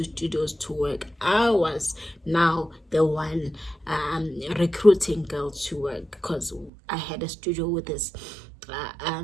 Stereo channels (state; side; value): drops out; left; at 6.7 s